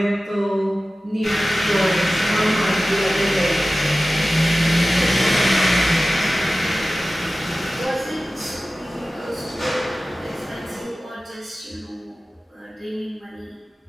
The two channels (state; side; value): normal; both; correlation 0.96